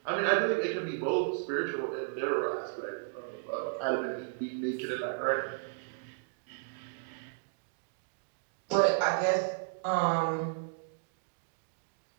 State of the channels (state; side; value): silent; left; digital silence